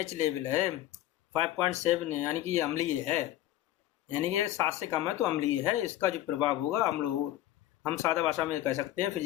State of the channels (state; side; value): quieter; right; 14.1 dB